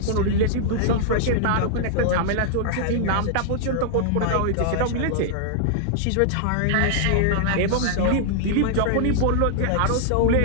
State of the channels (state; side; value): different; both; correlation -0.01